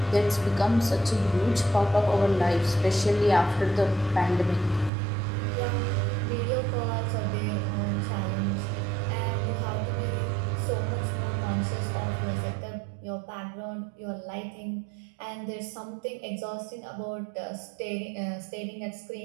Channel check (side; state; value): left; drops out; at 4.9 s